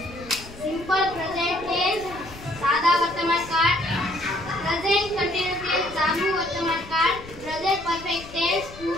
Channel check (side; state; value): left; noise; rumble, 17 dB below the sound